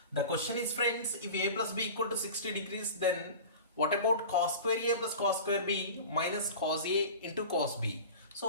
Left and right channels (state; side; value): inverted; both; correlation -0.35